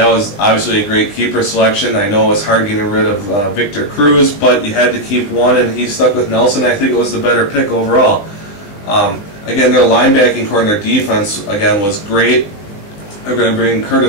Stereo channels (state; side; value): late; right; 20 ms